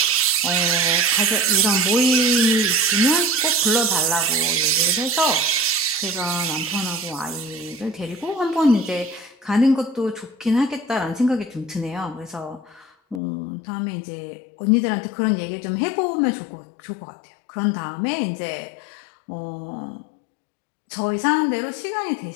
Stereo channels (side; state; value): right; drops out; at 13.2 s